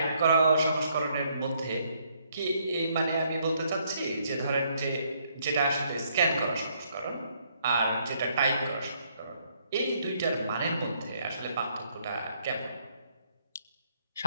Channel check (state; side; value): inverted; both; correlation -0.70